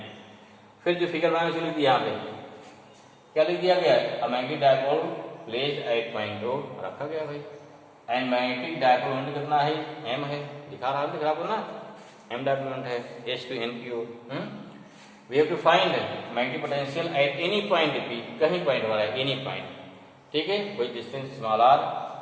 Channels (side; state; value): both; identical; correlation 1.00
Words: फिर जो फिगर बनाने से लिख दिया, यहाँ पे क्या लिख दिया गया, a magnetic dipole placed at point O रखा गया भाई। एंड मैग्नेटिक डायपोल मोमेंट कितना है, m है, दिखा रहा है ना, m डायपोल मोमेंट है S2n की ओर। We have to find magnetic potential at any point P, कहीं पॉइंट हमारा है, any point। ठीक है, वही distance small r